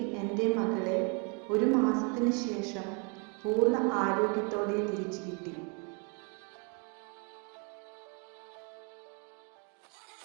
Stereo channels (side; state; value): left; quieter; 35.0 dB